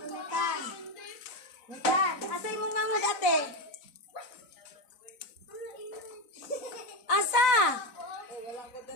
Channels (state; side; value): late; right; 4.0 ms